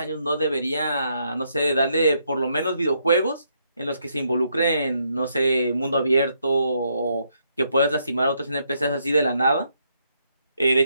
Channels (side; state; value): both; inverted; correlation -0.76